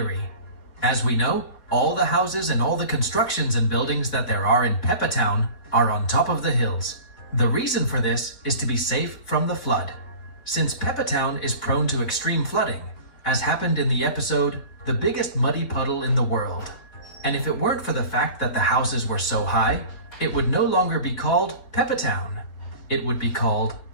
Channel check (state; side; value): late; right; 4.2 ms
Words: As we know, all the houses and all the constructions and buildings that there are in Peppa Town are on top of the hills. The reason for this is to be safe from the flood, since Peppa Town is prone to extreme flooding, as happened in the episode The Biggest Muddy Puddle in the World. And if it weren't for the fact that the houses were so high, it would no longer be called Peppa Town. It would be called